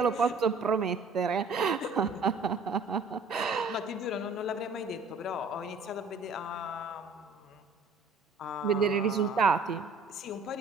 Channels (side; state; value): left; quieter; 3.9 dB